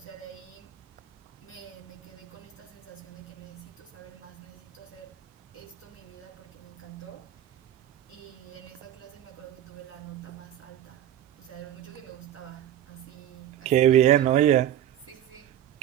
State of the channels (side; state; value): left; quieter; 11.5 dB